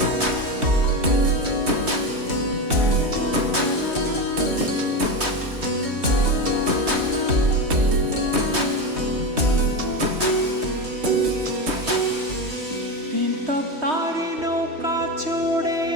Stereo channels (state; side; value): late; left; 3.2 ms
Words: তিনতপ তারি নৌকা চড়ে